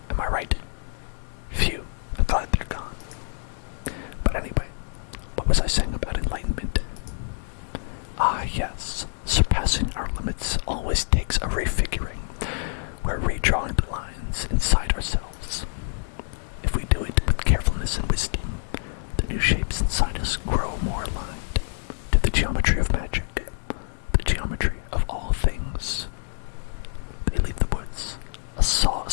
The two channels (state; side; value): silent; right; digital silence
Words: Am I right? Phew, I'm glad they're gone. But anyway, what was I saying about enlightenment? Ah, yes, surpassing our limits always takes a refiguring. We're redrawing the lines inside ourselves. If we do it with carefulness and wisdom, the new shapes inside us grow more aligned to the geometry of magic, the geometry of all things. They leave the woods, a